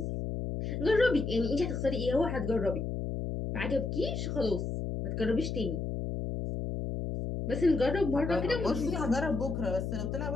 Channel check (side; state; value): left; noise; hum, 3 dB below the sound